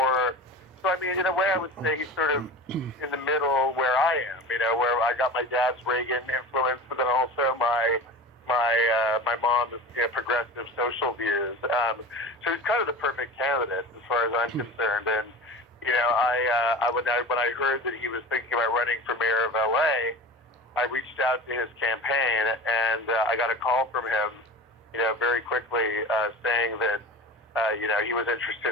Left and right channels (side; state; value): both; normal; correlation 0.32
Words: So I mean, in a way, I would say he's sort of in the middle where I am. Where I got my dad's Reagan influence, but then also my mom's progressive social views. So he's kind of the perfect candidate as far as I'm concerned. And when I heard that he was thinking about running for mayor of LA, I reached out to his campaign, and I got a call from him, very quickly, saying that, he was